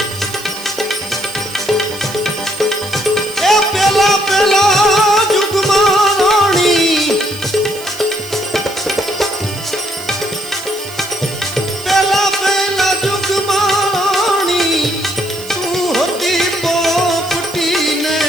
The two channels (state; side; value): noise; right; hiss, 15 dB below the sound